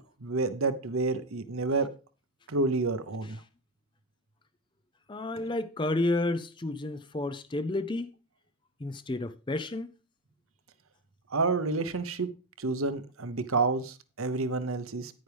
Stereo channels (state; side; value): normal; both; correlation 0.14